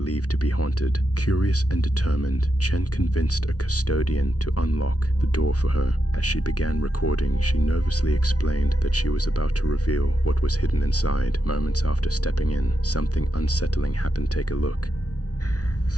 to be haunted. Curious and determined, Chen convinced a custodian to unlock the door for her. As she began recording, she nervously explained that she was about to reveal what was hidden inside. Moments after stepping in, something unsettling happened. Take a look.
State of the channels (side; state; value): right; late; 0.68 ms